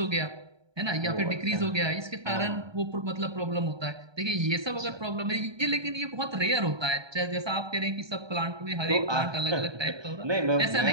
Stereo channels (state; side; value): late; left; 1.2 ms